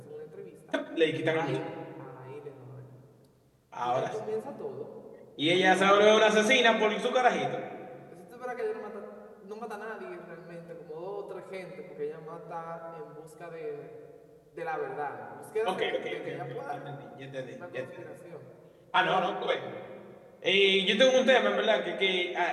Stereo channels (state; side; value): identical; both; correlation 1.00